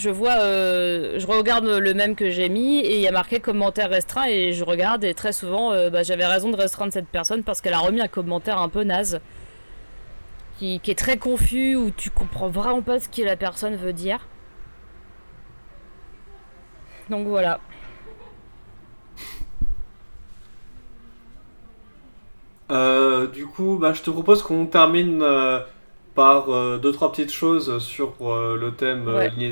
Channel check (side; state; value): both; inverted; correlation -1.00